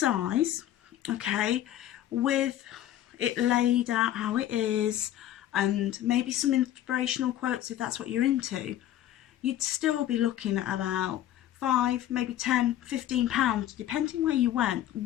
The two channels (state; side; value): quieter; right; 12.4 dB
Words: okay, with it laid out how it is, and maybe some inspirational quotes if that's what you're into, you'd still be looking at about £5, maybe £10, £15, depending where you went,